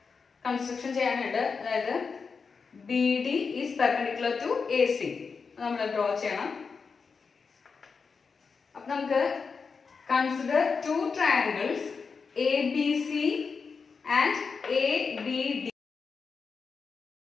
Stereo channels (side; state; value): right; quieter; 5.2 dB